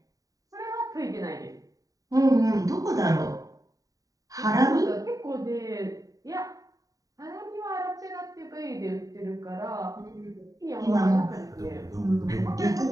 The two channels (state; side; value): late; left; 0.17 ms